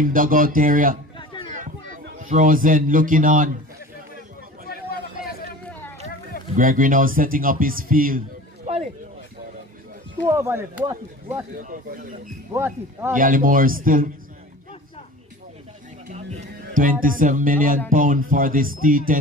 dugout area. Frozen looking on. Gregory now setting up his field. Gallimore still £27 million for this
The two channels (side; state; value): both; normal; correlation 0.39